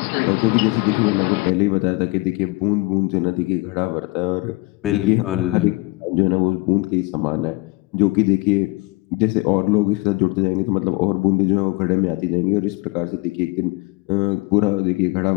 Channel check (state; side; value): quieter; right; 24.3 dB